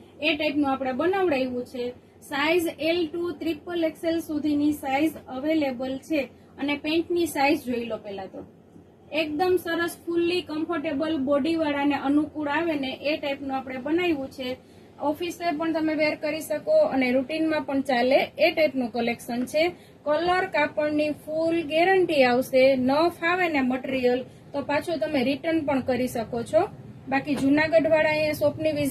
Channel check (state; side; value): identical; both; correlation 1.00